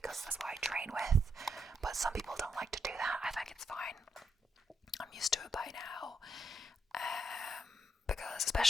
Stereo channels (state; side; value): normal; both; correlation 0.80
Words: that's what I train with, but some people don't like to do that. I think it's fine. I'm used to it by now. Because